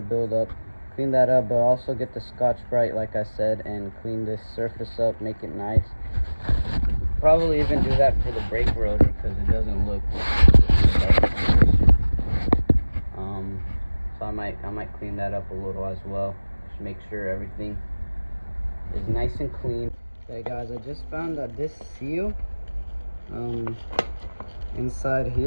buildup. Clean that up, but also get the Scotch-Brite like I said and clean this surface up, make it nice. Probably even do that for the brake rotor because it doesn't look so I might clean that up a little as well. Just make sure everything is nice and clean. Okay guys, I just found that this seal inside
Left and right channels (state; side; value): inverted; both; correlation -1.00